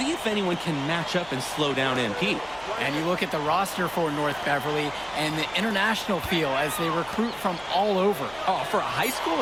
if anyone can match up and slow down MP. And you look at the roster for North Beverly and the international feel as they recruit from all over. Oh, for a high school,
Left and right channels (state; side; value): noise; left; hum, 24 dB below the sound